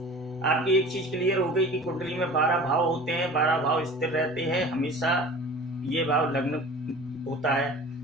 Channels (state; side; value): normal; both; correlation 0.41